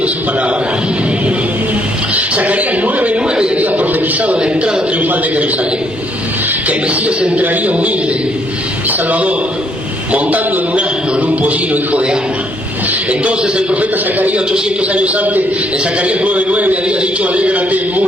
su palabra. Zacarías 9:9 había profetizado la entrada triunfal de Jerusalén, que el Mesías entraría humilde y salvador, montando en un asno, en un pollino, hijo de Ana. Entonces el profeta Zacarías, 800 años antes, en Zacarías 9:9 había dicho: alégrate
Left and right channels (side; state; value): both; normal; correlation 0.69